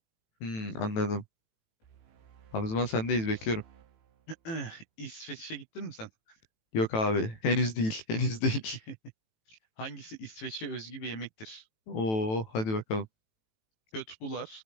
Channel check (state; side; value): late; right; 18 ms